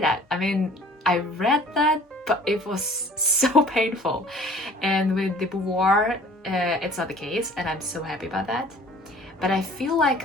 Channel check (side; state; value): both; normal; correlation 0.50